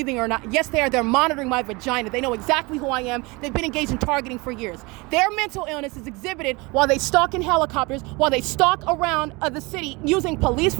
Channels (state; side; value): quieter; left; 25.5 dB